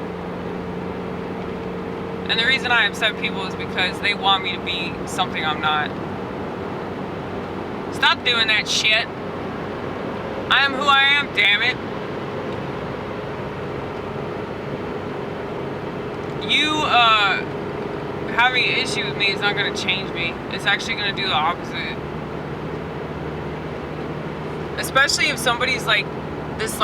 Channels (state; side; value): identical; both; correlation 1.00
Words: And the reason I upset people is because they want me to be something I'm not. Stop doing that shit. I am who I am, damn it. You, having an issue with me is not going to change me. It's actually going to do the opposite. Especially if somebody's like the